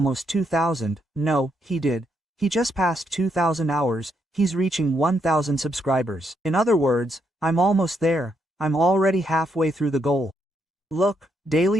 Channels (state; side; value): normal; both; correlation 0.77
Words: 2,000. No, he did. He just passed 2,000 hours. He's reaching 1,000 subscribers. In other words, I'm almost there. I'm already halfway through the goal. Look,